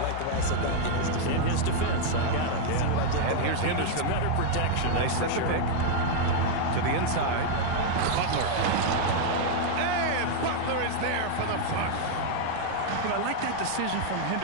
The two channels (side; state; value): both; different; correlation 0.00